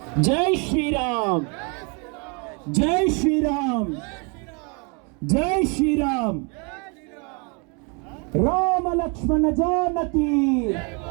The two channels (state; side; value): quieter; left; 34.0 dB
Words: జై శ్రీరామ్, జై శ్రీరామ్, జై శ్రీరామ్. రామ లక్ష్మణ జానకి,